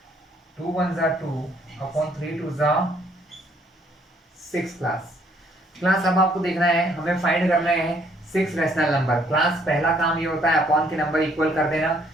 2 1 जा 2 अपॉन 3 2 जा 6 क्लास। अब आपको देखना है, हमें फाइंड करना है 6 रैशनल नंबर। क्लास पहला काम ये होता है अपॉन के नंबर इक्वल कर देना।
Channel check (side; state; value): both; normal; correlation 0.66